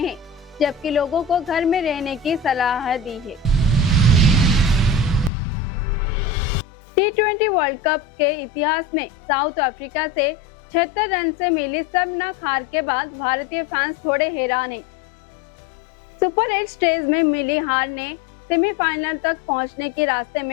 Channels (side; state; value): right; drops out; at 5.3 s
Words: जबकि लोगों को घर में रहने की सलाह दी है। T20 वर्ल्ड कप के इतिहास में साउथ अफ्रीका से 76 रन से मिली शर्मनाक हार के बाद भारतीय फैंस थोड़े हैरान हैं। सुपर 8 स्टेज में मिली हार ने सेमीफाइनल तक पहुंचने के रास्ते